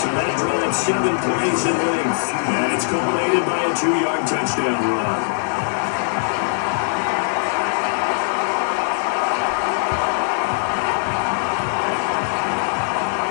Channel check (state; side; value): silent; right; digital silence